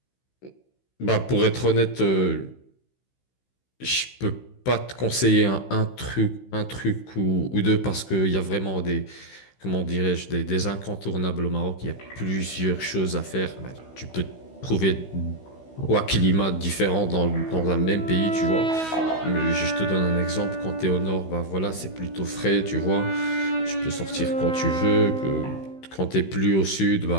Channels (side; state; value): right; late; 16 ms